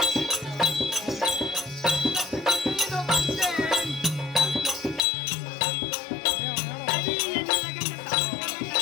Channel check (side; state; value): right; drops out; at 5.1 s